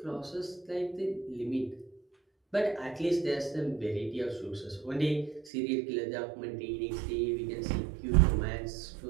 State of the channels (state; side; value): drops out; left; at 5.5 s